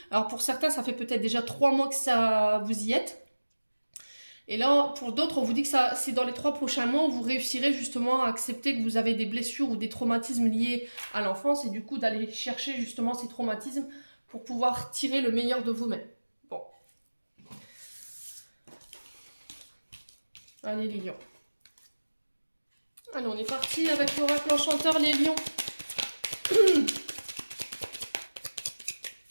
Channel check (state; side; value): inverted; both; correlation -1.00